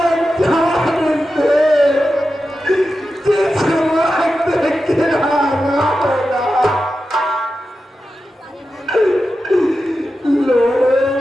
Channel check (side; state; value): both; normal; correlation 0.91